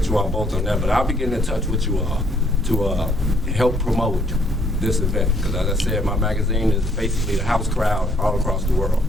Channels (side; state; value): both; normal; correlation 0.67